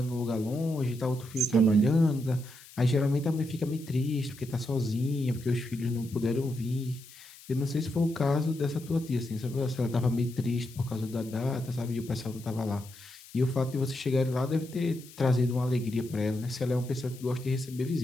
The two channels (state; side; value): noise; left; hiss, 20 dB below the sound